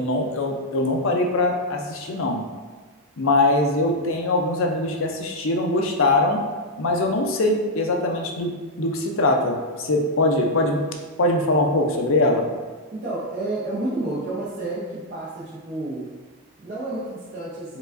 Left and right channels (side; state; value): both; normal; correlation -0.04